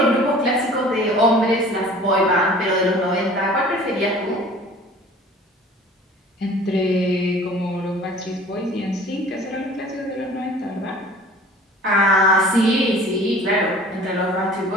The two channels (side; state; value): both; normal; correlation 0.47